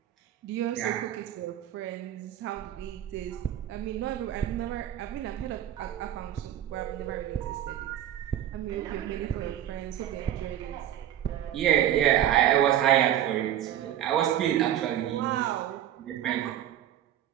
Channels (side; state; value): left; quieter; 11.5 dB